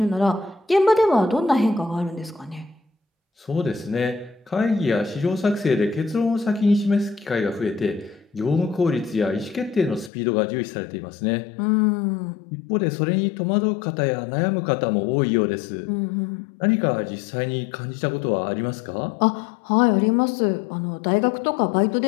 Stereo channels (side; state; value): right; drops out; at 10.1 s